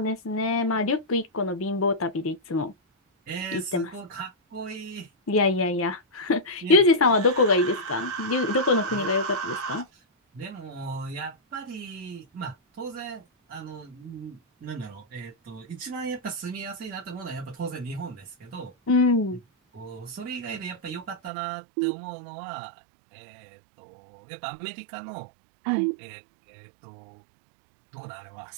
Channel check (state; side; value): drops out; left; at 21.3 s